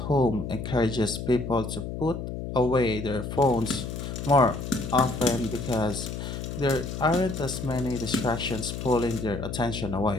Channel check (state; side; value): noise; left; hum, 6 dB below the sound